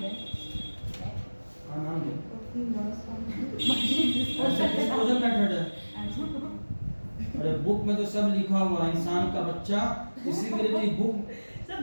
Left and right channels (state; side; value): inverted; both; correlation -1.00